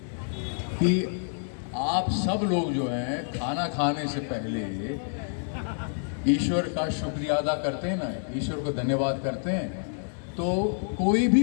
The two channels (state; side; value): silent; right; digital silence